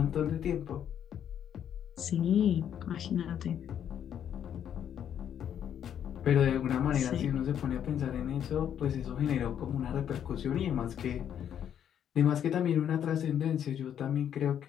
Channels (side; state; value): right; quieter; 9.4 dB